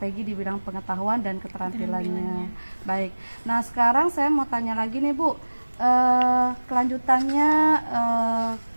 di bidang pengetahuan dan keterampilannya. Baik. Nah sekarang saya mau tanya lagi nih Bu, kelanjutannya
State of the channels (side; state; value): both; inverted; correlation -1.00